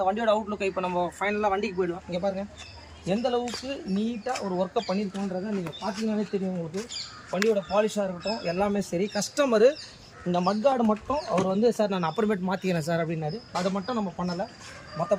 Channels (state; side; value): identical; both; correlation 1.00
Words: வண்டியோட அவுட்லுக். இப்போ நம்ம ஃபைனலாக வண்டிக்கு போயிடுவோம். இங்கே பாருங்கள் எந்த அளவுக்கு நீட்டாக ஒரு ஒர்க்கை பண்ணியிருக்கோன்றதை நீங்கள் பார்த்தீங்கன்னாலே தெரியும் உங்களுக்கு. வண்டியோட பாலிஷாக இருக்கட்டும் எல்லாமே சரி. கஸ்டமரு இந்த மட்கார்டு மட்டும் அவர் வந்து சார் நான் அப்புறமேட்டு மாற்றிக்கிறேன் சார் அப்படின்னாரு. அதை மட்டும் நம்ம பண்ணலை.